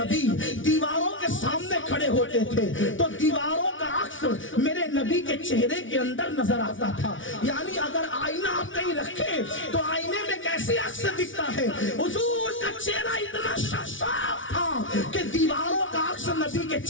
دیواروں کے سامنے کھڑے ہوتے تھے تو دیواروں کا عکس میرے نبی کے چہرے کے اندر نظر آتا تھا۔ یعنی اگر آئینہ آپ کہیں رکھیں تو آئینے میں کیسے عکس دکھتا ہے؟ حضور کا چہرہ اتنا شفاف تھا کہ دیواروں کا عکس نبی کے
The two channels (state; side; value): late; right; 0.56 ms